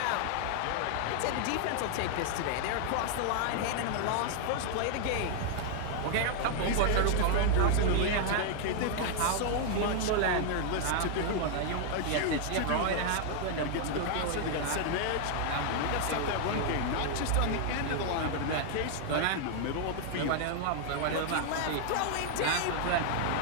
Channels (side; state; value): both; different; correlation 0.00